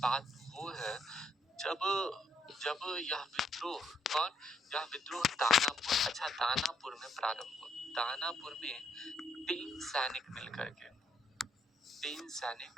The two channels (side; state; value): both; normal; correlation 0.73